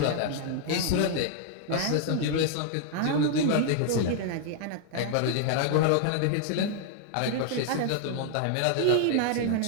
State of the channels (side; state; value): both; different; correlation 0.00